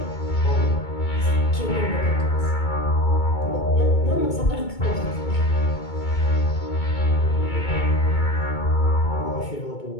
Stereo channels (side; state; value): right; late; 2.2 ms